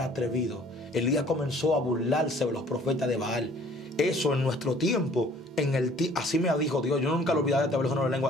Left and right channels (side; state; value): both; normal; correlation 0.55